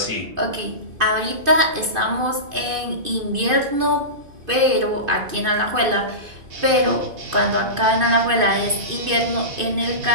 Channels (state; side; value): late; left; 2.5 ms